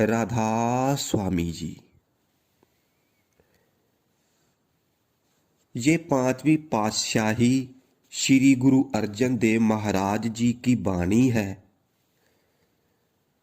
स्वामी जी। ये पांचवी पातशाही श्री गुरु अर्जन देव महाराज जी की वाणी है।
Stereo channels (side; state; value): both; identical; correlation 1.00